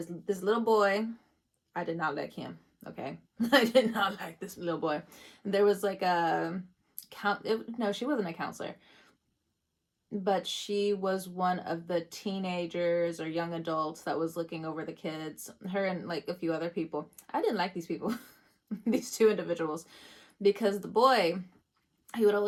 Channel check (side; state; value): both; identical; correlation 1.00